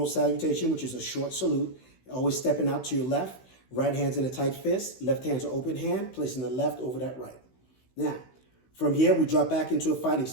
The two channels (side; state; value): right; late; 16 ms